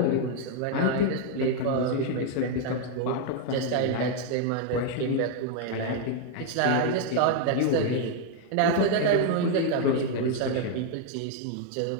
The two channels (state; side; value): different; both; correlation 0.00